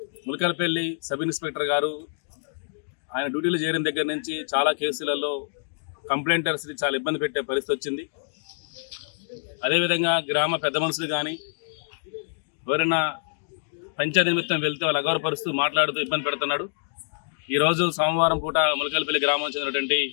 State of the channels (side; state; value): right; silent; digital silence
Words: ములకలపల్లి సబ్ ఇన్స్పెక్టర్ గారు ఆయన డ్యూటీలో చేరిన దగ్గర నుంచి చాలా కేసులలో కంప్లైంటర్స్ని చాలా ఇబ్బంది పెట్టే పరిస్థితి వచ్చింది. అదేవిధంగా గ్రామ పెద్ద మనుషులు కానీ ఎవరైనా పంచాయతీ నిమిత్తం వెళ్తే వాళ్ళు అగౌరవపరుస్తూ మాట్లాడుతూ ఇబ్బంది పెడుతున్నాడు. ఈరోజు సోమవారం పూట ములకలపల్లి గ్రామం చెందినటువంటి